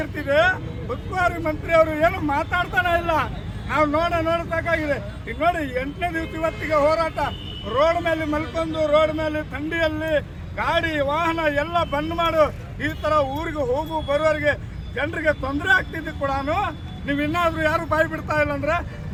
ಉಸ್ತುವಾರಿ ಮಂತ್ರಿ ಅವರು ಏನು ಮಾತಾಡ್ತಾನೆ ಇಲ್ಲ. ನಾವು ನೋಡಬೇಕಾಗಿದೆ. ಈಗ ನೋಡಿ 8ನೇ ದಿವಸ ಇವತ್ತಿಗೆ ಹೋರಾಟ. ರೋಡ್ ಮೇಲೆ ಮಲ್ಕೊಂಡು, ರೋಡ್ ಮೇಲೆ ಥಂಡಿಯಲ್ಲಿ ಗಾಡಿ ವಾಹನ ಎಲ್ಲ ಬಂದ್ ಮಾಡು. ಈ ತರ ಊರಿಗೆ ಹೋಗು ಬರುವವರಿಗೆ ಜನರಿಗೆ ತೊಂದರೆ ಆಗ್ತಿದ್ದು ಕೂಡ ನೀವು ಇನ್ನಾದ್ರೂ ಯಾರು ಬಾಯಿ ಬಿಡ್ತಾ ಇಲ್ಲ ಅಂದ್ರೆ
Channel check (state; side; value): identical; both; correlation 1.00